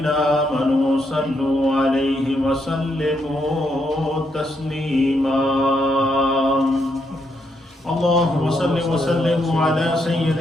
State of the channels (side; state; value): both; normal; correlation 0.78